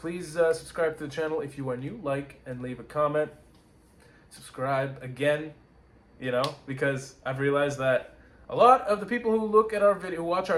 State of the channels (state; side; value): identical; both; correlation 1.00